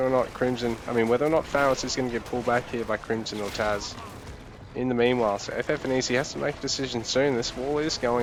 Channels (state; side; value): identical; both; correlation 1.00